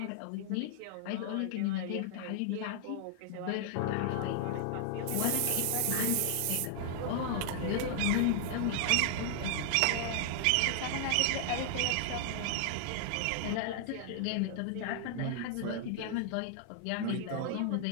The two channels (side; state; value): both; different; correlation 0.00